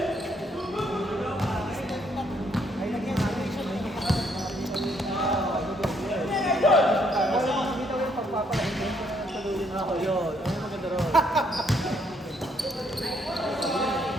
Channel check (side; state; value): both; normal; correlation 0.70